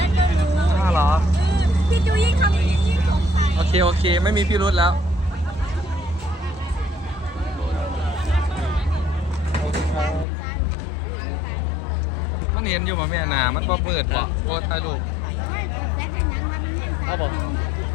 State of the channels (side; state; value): right; drops out; at 10.2 s